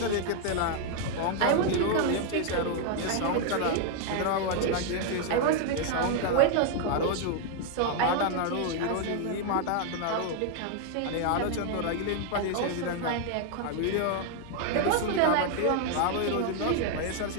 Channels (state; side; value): different; both; correlation 0.00